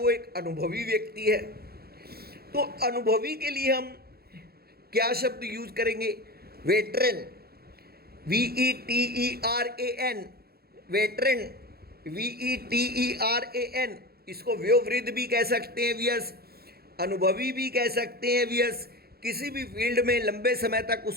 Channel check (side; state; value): left; late; 0.45 ms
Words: एक अनुभवी व्यक्ति है। तो अनुभवी के लिए हम क्या शब्द यूज करेंगे? Veteran, VETERAN, veteran, VETERAN। इसको वयोवृद्ध भी कह सकते हैं वियस, अनुभवी भी कह सकते हैं वियस। किसी भी फील्ड में लंबे समय तक